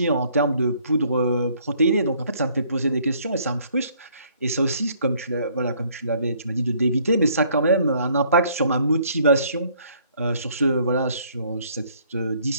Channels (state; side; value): inverted; both; correlation -0.63